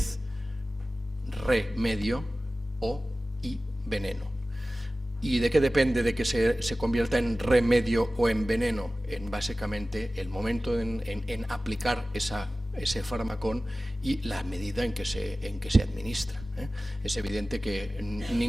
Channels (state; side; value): normal; both; correlation 0.96